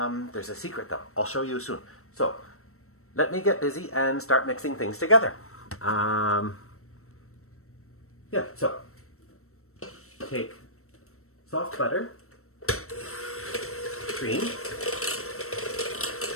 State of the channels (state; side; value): late; right; 0.63 ms